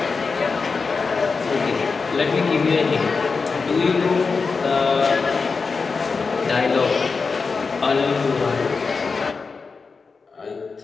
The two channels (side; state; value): right; quieter; 4.7 dB